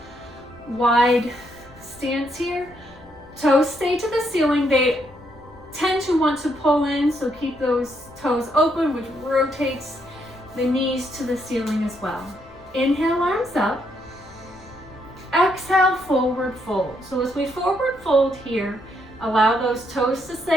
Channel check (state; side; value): noise; left; rumble, 24 dB below the sound